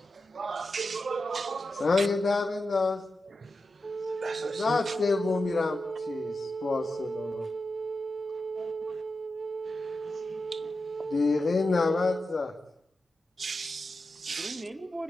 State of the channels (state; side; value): normal; both; correlation 0.90